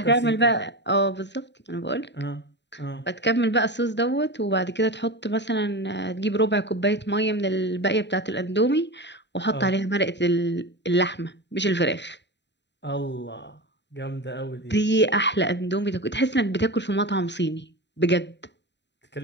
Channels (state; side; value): late; right; 0.51 ms